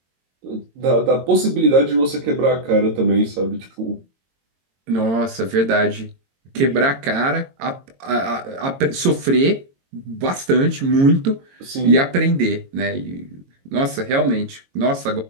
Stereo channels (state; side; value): late; left; 22 ms